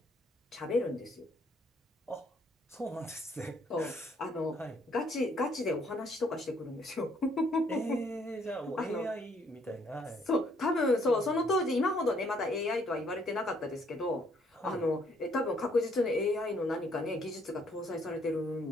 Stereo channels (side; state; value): both; normal; correlation 0.67